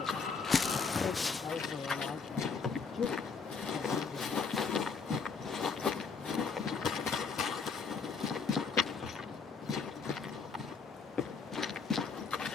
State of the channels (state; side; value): quieter; right; 5.2 dB